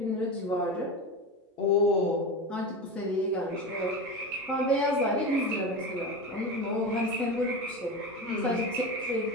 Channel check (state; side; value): normal; both; correlation 0.24